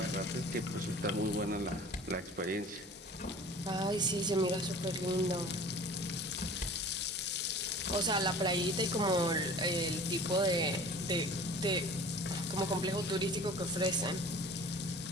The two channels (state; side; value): normal; both; correlation 0.43